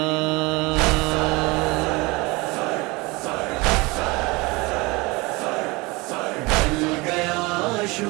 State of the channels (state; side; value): quieter; left; 24.4 dB